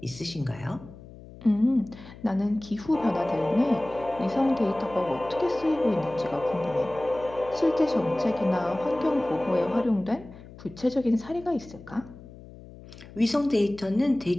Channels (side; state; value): left; noise; hum, 18 dB below the sound